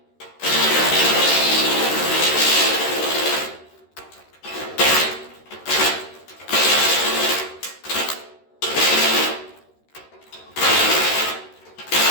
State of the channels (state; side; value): late; right; 13 ms